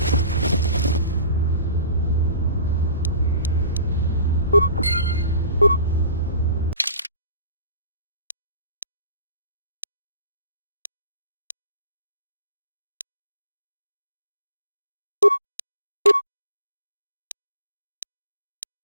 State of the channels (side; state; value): both; inverted; correlation -0.42